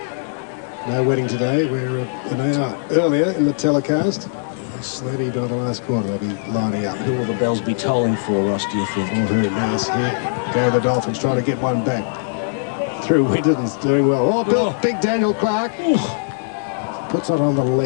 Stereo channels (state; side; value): silent; right; digital silence